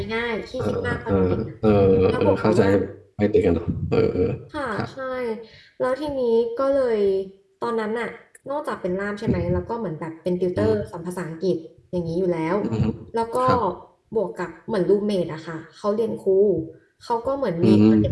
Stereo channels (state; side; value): identical; both; correlation 1.00